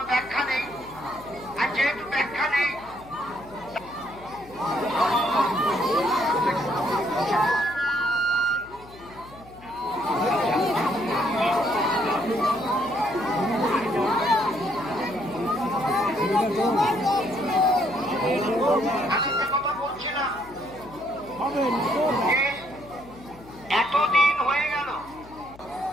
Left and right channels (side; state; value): left; noise; hum, 21 dB below the sound